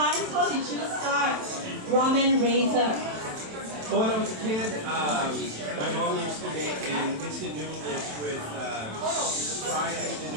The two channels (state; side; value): late; left; 27 ms